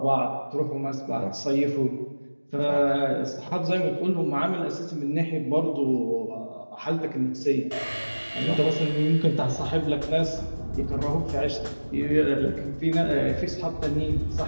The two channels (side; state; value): both; inverted; correlation -1.00